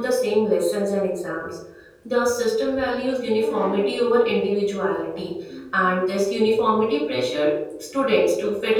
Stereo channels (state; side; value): identical; both; correlation 1.00